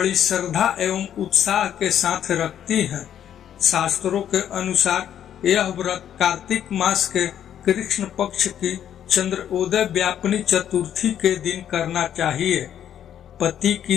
श्रद्धा एवं उत्साह के साथ रखती हैं। शास्त्रों के अनुसार यह व्रत कार्तिक मास के कृष्ण पक्ष की चंद्रोदय व्यापिनी चतुर्थी के दिन करना चाहिए। पति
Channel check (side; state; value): right; quieter; 10.0 dB